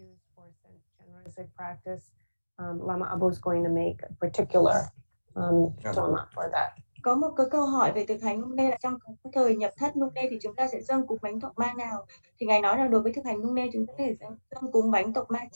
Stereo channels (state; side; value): inverted; both; correlation -1.00